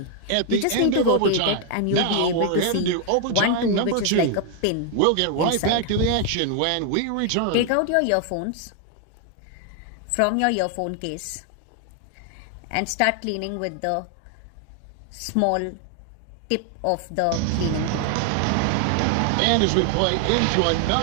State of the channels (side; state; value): both; different; correlation 0.00